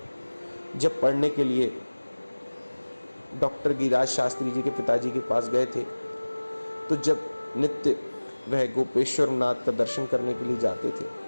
जब पढ़ने के लिए डॉक्टर गिरिराज शास्त्री जी के पिताजी के पास गए थे, तो जब नित्य वह गोपेश्वर नाथ का दर्शन करने के लिए जाते थे,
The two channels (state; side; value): inverted; both; correlation -1.00